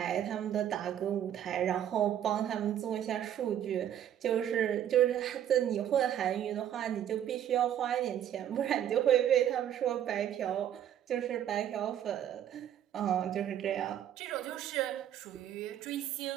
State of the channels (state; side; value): quieter; left; 10.5 dB